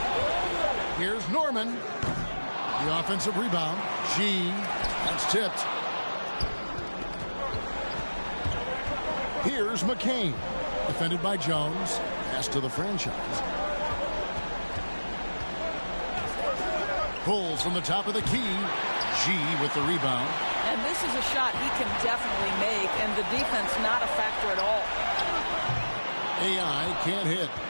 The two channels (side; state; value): both; inverted; correlation -1.00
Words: Here's Norman. The offensive rebound. That's tipped. Here's McCain. Defended by Jones. Pass to the franchise. Pulls from the top of the key. With the rebound. And this is a shot he can definitely make, and the defense not a factor at all. AI can't hit.